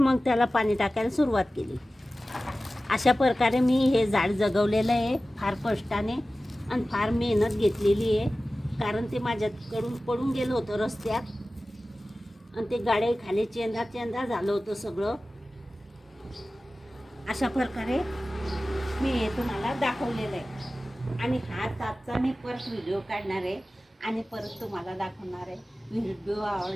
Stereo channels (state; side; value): normal; both; correlation 0.96